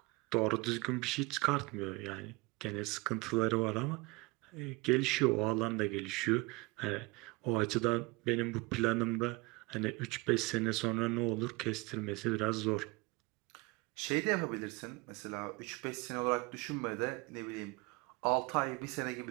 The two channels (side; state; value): left; quieter; 24.7 dB